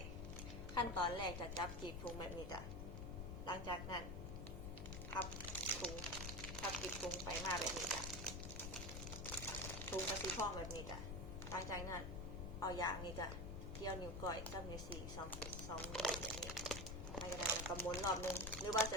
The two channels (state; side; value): noise; left; rumble, 5 dB below the sound